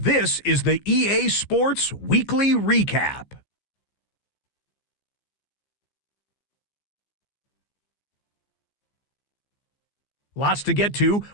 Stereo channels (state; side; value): late; right; 15 ms